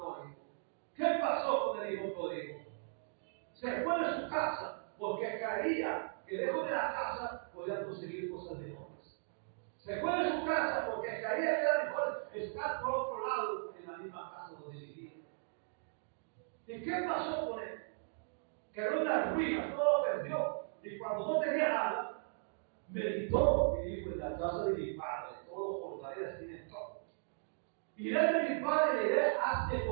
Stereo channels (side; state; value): left; silent; digital silence